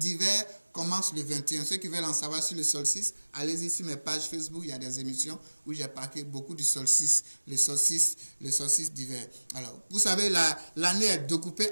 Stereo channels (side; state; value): both; inverted; correlation -1.00